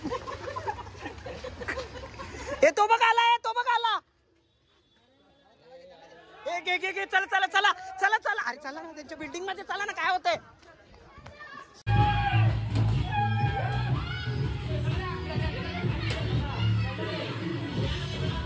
तो बघ आला चला अरे चला ना त्यांच्या बिल्डिंग मध्ये चला ना काय होतंय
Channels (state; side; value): identical; both; correlation 1.00